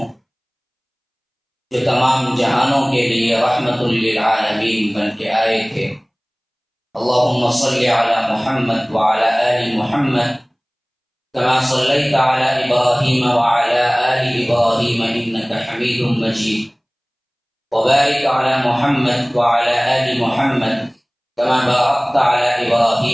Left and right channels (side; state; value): both; identical; correlation 1.00